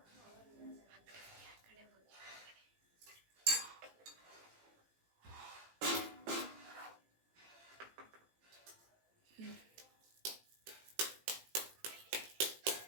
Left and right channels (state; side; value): late; left; 18 ms